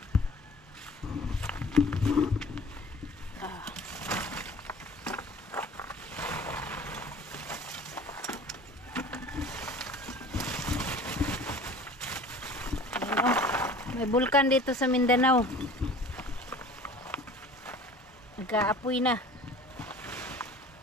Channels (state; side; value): normal; both; correlation 0.45